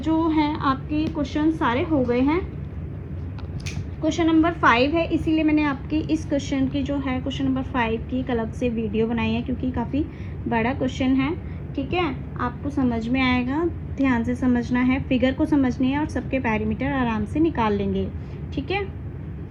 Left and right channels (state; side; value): identical; both; correlation 1.00